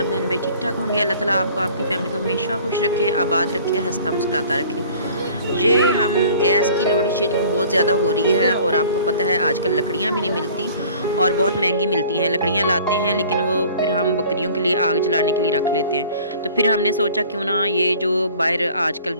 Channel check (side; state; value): both; inverted; correlation -0.49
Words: बहन भाई ठीक ठाक होंगे। अल्लाह ताला आपको आपकी फ़ैमिली को हमेशा खुश रखे, आबाद रखे, हंसता मुस्कुराता रखे। ये हम गैस की लोड शेडिंग बहुत ज़्यादा हो रही है और आपको पता है आजकल लकड़ियाँ भी नहीं मिलती और बहुत महंगी मिलती हैं। लकड़ियाँ लाते हैं लेकिन वो फिर हम बकरियों के लिए आग जलाने के लिए रख लेते हैं। तो फिर हमने सोचा क्यों ना ये जो बाहर आजकल